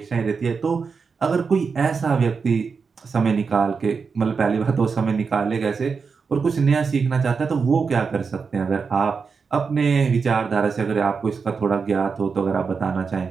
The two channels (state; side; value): quieter; left; 5.3 dB